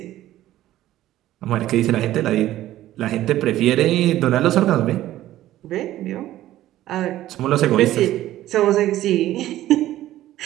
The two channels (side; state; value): left; quieter; 14.2 dB